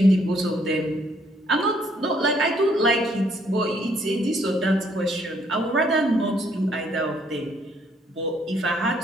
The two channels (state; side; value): normal; both; correlation 0.67